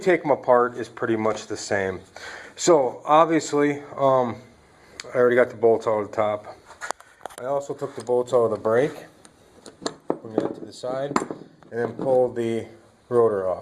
them apart is pretty much the same. So obviously, I already got the bolts out of the top. I also took the bolts out of the brake, bring that to the side, and then pull the rotor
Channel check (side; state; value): both; identical; correlation 1.00